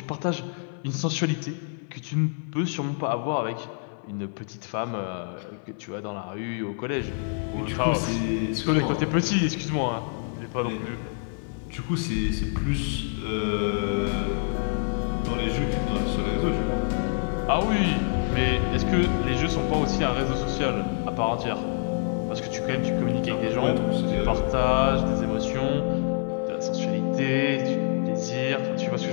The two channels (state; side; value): silent; right; 61 dB below the other